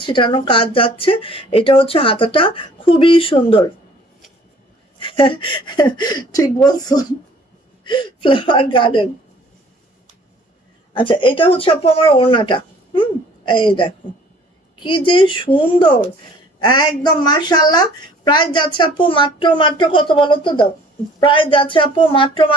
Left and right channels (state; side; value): normal; both; correlation 0.53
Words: ছিটানো কাজ যাচ্ছে। এটা হচ্ছে হাতাটা, খুবই সুন্দর। ঠিক বলছো, ফ্লাওয়ার গার্ডেন। আচ্ছা, এটা হচ্ছে আপু আমার ওড়নাটা। এই দেখো কি যে সুন্দর, একদম মাশাআল্লাহ। প্রাইস যাচ্ছে আপু মাত্র কত বলো তো, দাও। প্রাইস যাচ্ছে আপু মাত্র